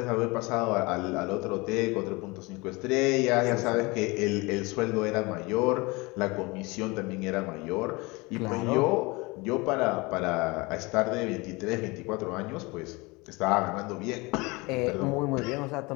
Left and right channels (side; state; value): right; quieter; 24.9 dB